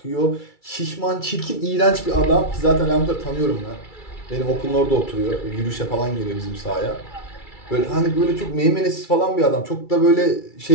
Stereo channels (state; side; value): late; right; 2.3 ms